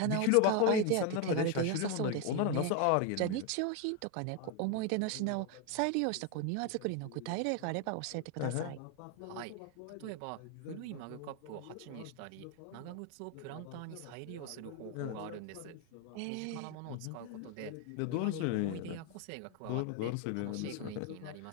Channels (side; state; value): both; different; correlation 0.01